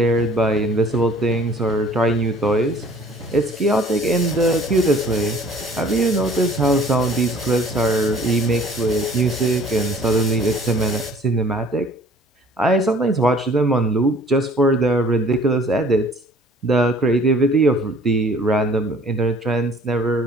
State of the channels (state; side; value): normal; both; correlation 0.52